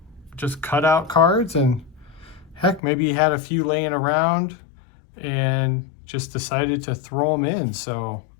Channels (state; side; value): drops out; right; at 2.8 s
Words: just cutout cards, and heck, maybe he had a few laying around and just decided to throw them in. So